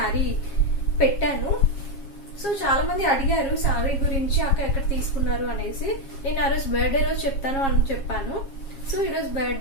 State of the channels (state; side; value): late; right; 7.3 ms